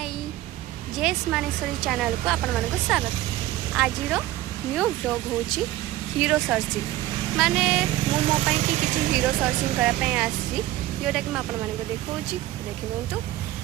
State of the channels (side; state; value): left; quieter; 15.5 dB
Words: जेस Maneshwari channel को आपण मानक स्वागत। आज न्यू ब्लॉग होची हीरो सर्चिंग माने मु मो पई कि किछि हीरो सर्चिंग करा पई आसी जोटा कि मैं आपण मानक देखौची देखिबंतु